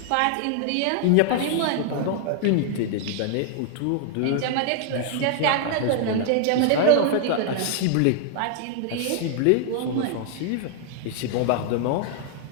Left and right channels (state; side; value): different; both; correlation 0.00